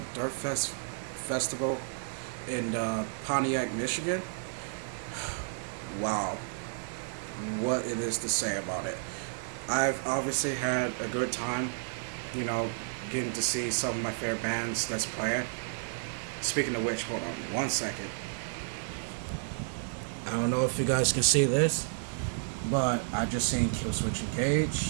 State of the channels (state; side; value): silent; left; digital silence